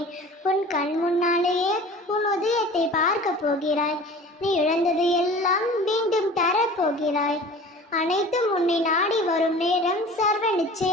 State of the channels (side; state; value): both; normal; correlation 0.41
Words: உன் கண் முன்னாலேயே உன் உதயத்தை பார்க்க போகிறாய். நீ இழந்தது எல்லாம் மீண்டும் தரப்போகிறாய். அனைத்தும் உன்னை நாடி வரும் நேரம் சர்வ